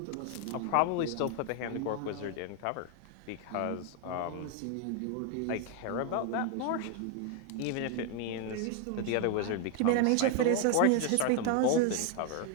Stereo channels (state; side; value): different; both; correlation 0.01